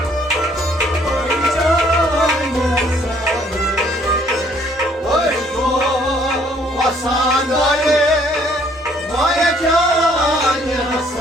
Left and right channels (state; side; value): normal; both; correlation 0.63